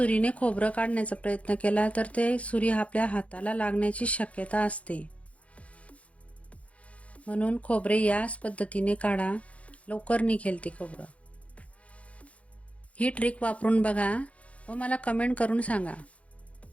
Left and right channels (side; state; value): right; late; 0.064 ms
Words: खोबरं काढण्याचा प्रयत्न केला तर ते सुरी आपल्या हाताला लागण्याची शक्यता असते. म्हणून खोबरे याच पद्धतीने काढा, लवकर निघेल ते खोबरं. ही ट्रिक वापरून बघा व मला कमेंट करून सांगा.